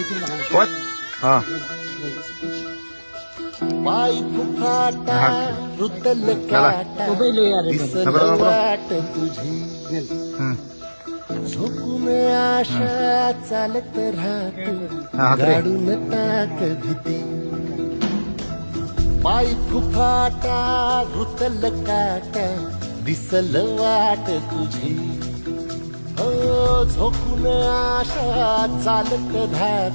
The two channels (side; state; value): both; inverted; correlation -1.00